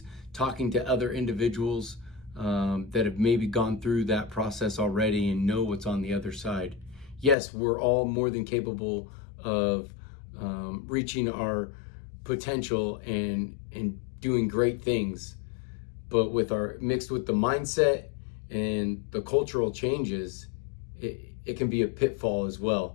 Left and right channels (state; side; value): drops out; right; at 7.4 s